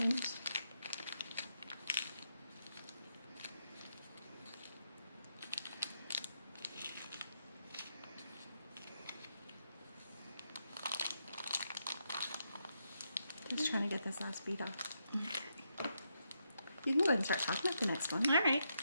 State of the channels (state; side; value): inverted; both; correlation -0.81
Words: Just trying to get this last bead off. You can go ahead and start talking about the next one. All right.